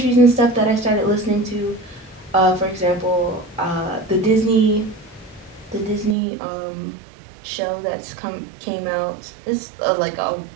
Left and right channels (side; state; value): left; drops out; at 6.2 s